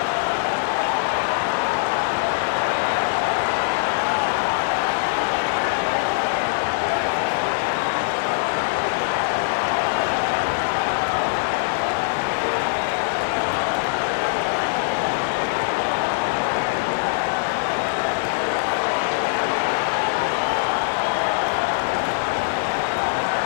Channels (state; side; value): quieter; right; 36.8 dB